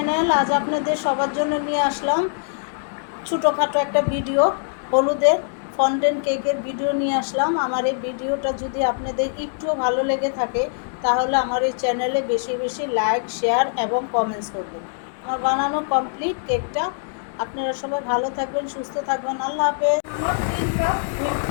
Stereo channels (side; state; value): right; silent; digital silence